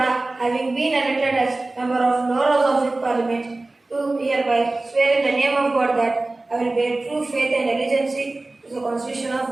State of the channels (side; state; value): left; quieter; 3.0 dB